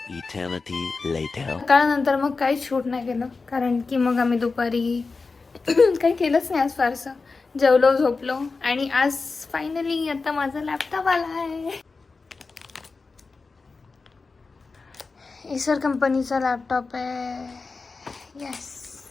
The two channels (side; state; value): right; quieter; 4.2 dB